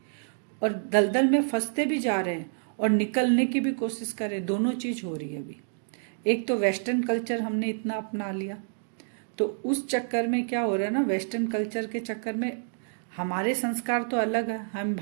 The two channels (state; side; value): silent; left; digital silence